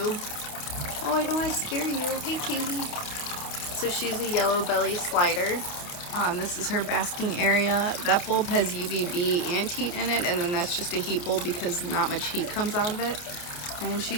Oh, I don't want to scare you. Hey, cutie. So she's a yellow belly slider. This is her basking area. That bulb has UVB and heat in it, and then that's just a heat bulb because not much heat comes out of it. And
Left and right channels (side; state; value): right; late; 29 ms